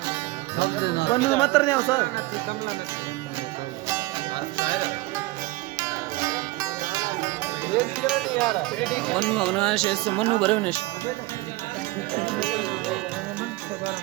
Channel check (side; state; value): left; quieter; 20.5 dB